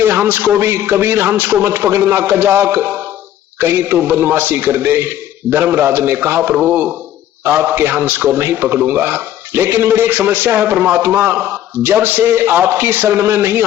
हंस को भी, कबीर हंस को मत पकड़ना कजाक, कहीं तो बदमाशी कर दे। धर्मराज ने कहा प्रभु आपके हंस को नहीं पकड़ूंगा, लेकिन मेरी एक समस्या है परमात्मा, जब से आपकी शरण में नहीं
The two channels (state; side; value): quieter; right; 12.0 dB